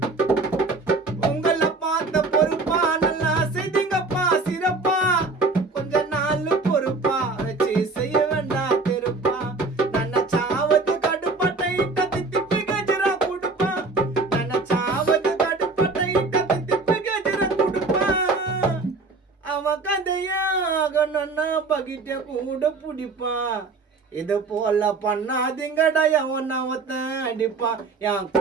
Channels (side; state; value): left; quieter; 3.8 dB